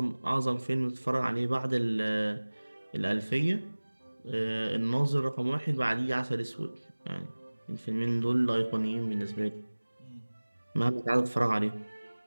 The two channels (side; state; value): both; inverted; correlation -1.00